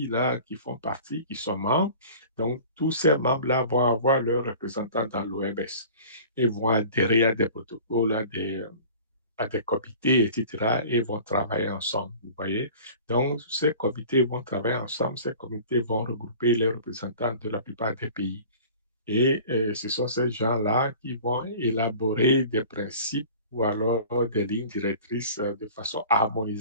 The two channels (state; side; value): inverted; both; correlation -0.43